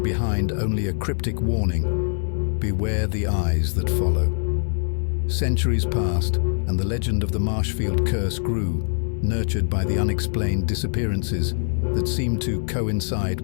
behind only a cryptic warning: beware the eyes that follow. Centuries passed, and the legend of the Marshfield Curse grew, nurtured by the unexplained disappearances that seemed to coincide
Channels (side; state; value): right; silent; digital silence